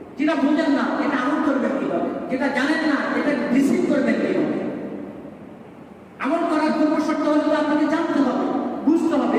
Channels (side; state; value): both; identical; correlation 1.00